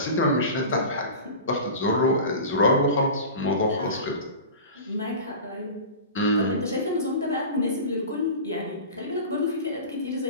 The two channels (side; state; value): both; inverted; correlation -0.33